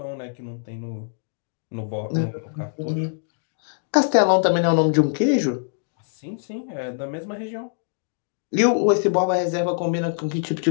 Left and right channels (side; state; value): right; silent; digital silence